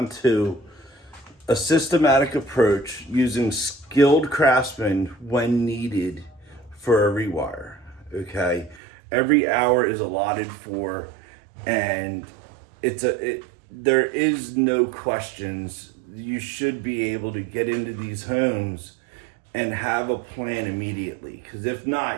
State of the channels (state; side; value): drops out; left; at 8.8 s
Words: to a systematic approach using skilled craftsmen when needed for a rewire, okay? Every hour is allotted for, and there is no questions. You should be able to get into these homes and have a plan immediately, because if